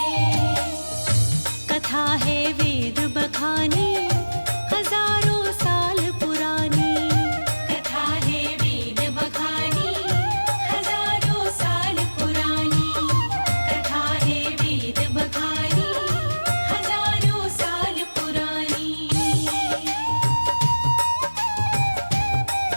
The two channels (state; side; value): inverted; both; correlation -1.00